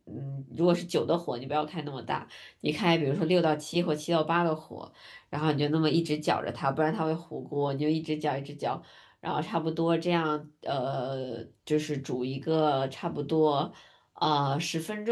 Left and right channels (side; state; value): both; identical; correlation 1.00